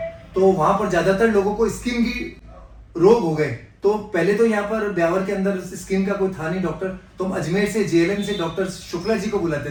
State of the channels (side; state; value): both; identical; correlation 1.00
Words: तो वहाँ पर ज़्यादातर लोगों को स्किन की रोग हो गए। तो पहले तो यहाँ पर ब्यावर के अंदर स्किन का कोई था नहीं डॉक्टर, तो हम अजमेर से जेएलएन से डॉक्टर शुक्ला जी को बुलाते